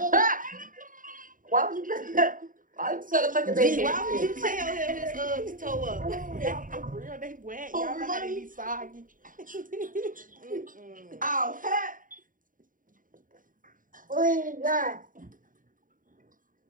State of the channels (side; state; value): left; late; 0.39 ms